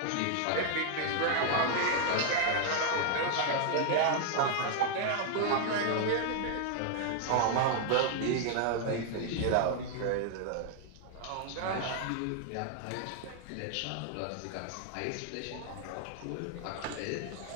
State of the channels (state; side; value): different; both; correlation 0.00